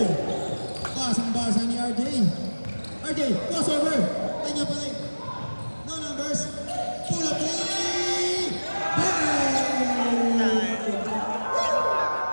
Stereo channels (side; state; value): both; inverted; correlation -1.00